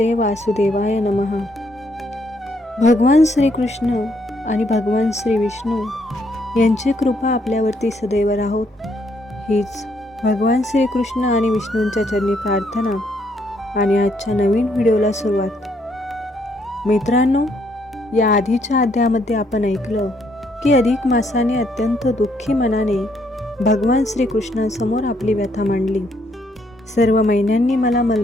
वासुदेवाय नमः. भगवान श्रीकृष्ण आणि भगवान श्री विष्णू यांची कृपा आपल्यावरती सदैव राहोत, हीच भगवान श्रीकृष्ण आणि विष्णूंच्या चरणी प्रार्थना आणि आजच्या नवीन व्हिडिओला सुरुवात. मित्रांनो, या आधीच्या अध्यायामध्ये आपण ऐकलं की अधिक मासाने अत्यंत दुःखी मनाने भगवान श्रीकृष्णांसमोर आपली व्यथा मांडली. सर्व महिन्यांनी मला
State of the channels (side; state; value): both; normal; correlation 0.72